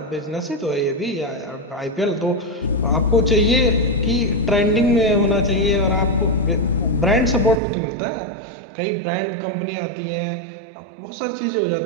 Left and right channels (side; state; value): left; drops out; at 7.6 s